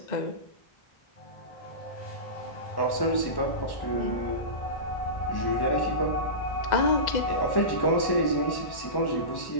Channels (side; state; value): right; late; 1.1 ms